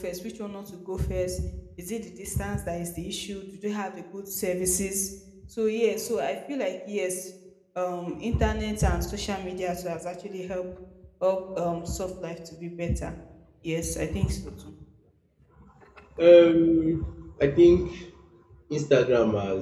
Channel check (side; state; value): both; identical; correlation 1.00